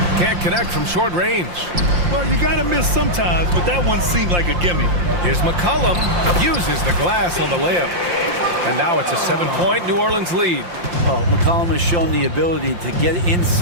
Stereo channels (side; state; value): left; late; 5.7 ms